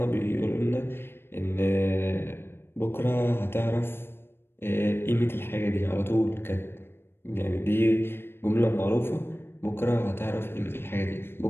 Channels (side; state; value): right; late; 0.11 ms